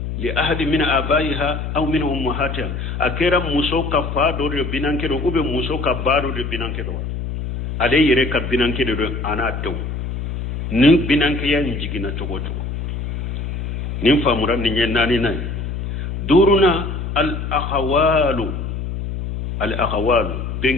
li ahadi min abaiha aw min ummahatiha akera muso ka fa do de binanke do ube muso ka baro de binanke do ale yere ka binanke de ana dew nin binanke ya njigina togo nin famura ni nyenani nay duruna al akhawalu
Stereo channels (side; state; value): left; noise; hum, 4 dB below the sound